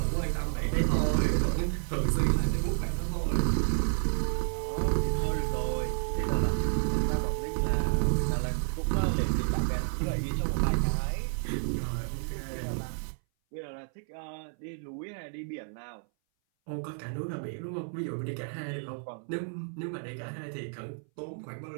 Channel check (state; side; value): silent; left; 57 dB below the other